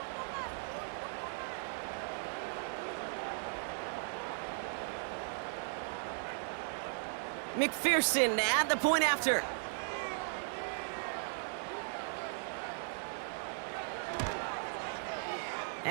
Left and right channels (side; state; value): left; silent; digital silence